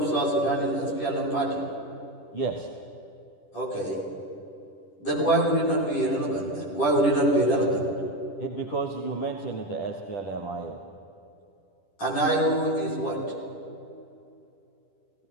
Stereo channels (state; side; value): late; right; 10 ms